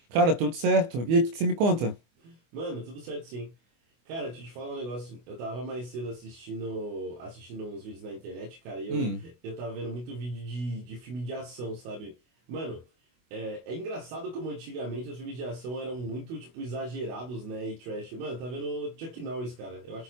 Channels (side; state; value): left; late; 24 ms